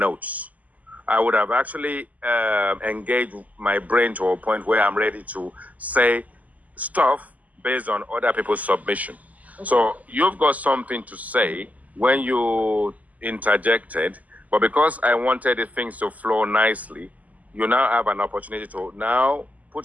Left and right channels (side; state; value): left; late; 0.076 ms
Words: I would have actually engaged my brain to a point where I'm ready to say stuff based on other people's submission. Okay. So you've got something to say when you interjected, but because I wanted the things to flow nicely, you now have an opportunity to now